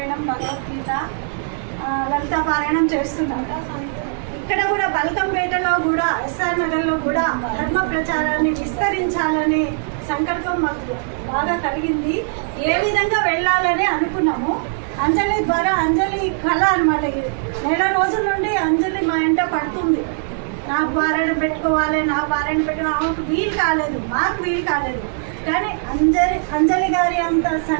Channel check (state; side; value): silent; left; digital silence